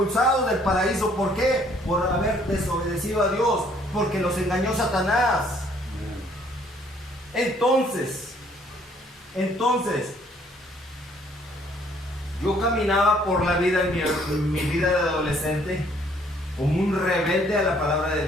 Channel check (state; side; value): normal; both; correlation 0.62